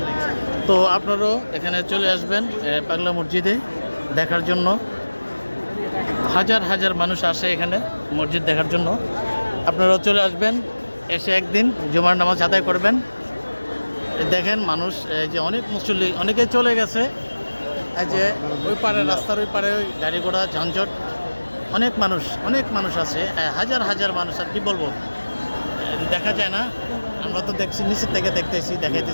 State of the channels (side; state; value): both; inverted; correlation -1.00